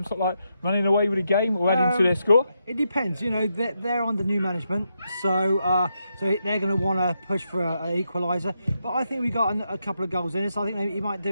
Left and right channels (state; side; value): inverted; both; correlation -0.83